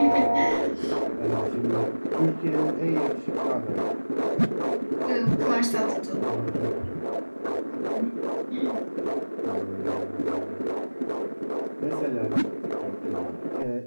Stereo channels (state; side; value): inverted; both; correlation -1.00